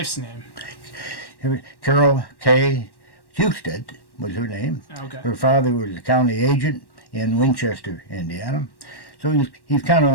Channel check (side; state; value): right; late; 1.1 ms